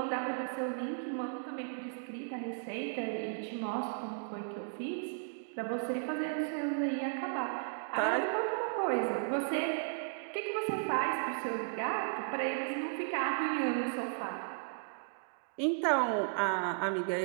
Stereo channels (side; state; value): left; silent; digital silence